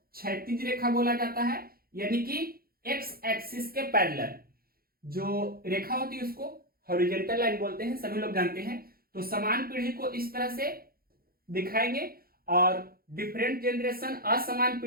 क्षैतिज रेखा बोला जाता है, यानी कि एक्स एक्सिस के पैरेलल जो रेखा होती है उसको हॉरिजॉन्टल लाइन बोलते हैं, सभी लोग जानते हैं। तो समान पीढ़ी को इस तरह से दिखाएंगे और डिफरेंट जनरेशन असमान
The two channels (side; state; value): left; late; 0.44 ms